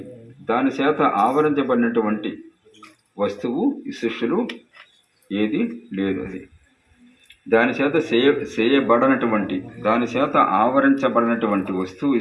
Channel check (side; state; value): both; identical; correlation 1.00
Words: దాని చేత ఆవరించబడినటువంటి వస్తువు ఈ సృష్టిలో ఏది లేదు. అది దాని చేత చేయబడినటువంటి, దాని చేత ఆవరించబడినటువంటి వస్తువు ఈ